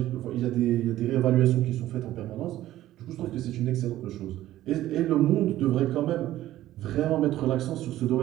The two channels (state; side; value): quieter; left; 14.3 dB